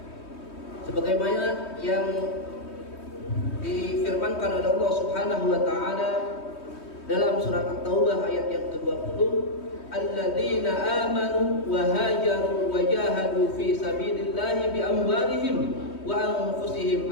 Sebagaimana yang difirmankan oleh Allah Subhanahu wa taala dalam surat At-Taubah ayat yang ke-20, alladzina amanu wa hajaru wa jahadu fi sabilillahi bi amwalihim wa anfusihim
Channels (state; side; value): late; right; 3.2 ms